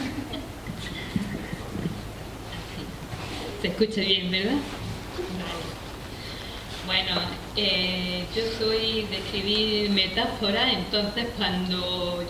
Se escucha bien, ¿verdad? Vale. Bueno, yo soy de escribir metáforas, entonces cuando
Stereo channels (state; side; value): identical; both; correlation 1.00